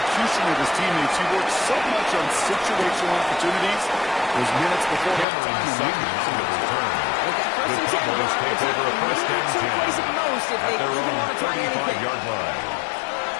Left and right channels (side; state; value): right; drops out; at 5.2 s